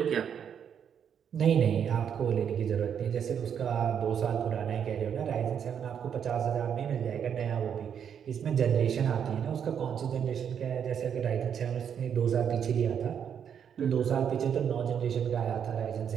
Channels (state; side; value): quieter; left; 8.1 dB